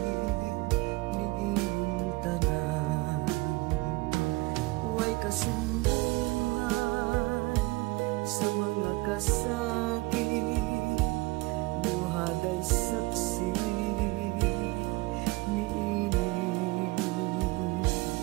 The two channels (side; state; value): left; quieter; 22.5 dB